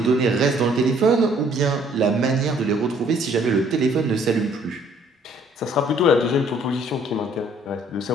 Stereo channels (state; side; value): normal; both; correlation 0.61